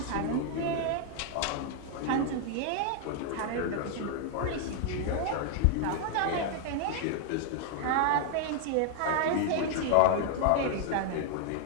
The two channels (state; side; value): different; both; correlation 0.00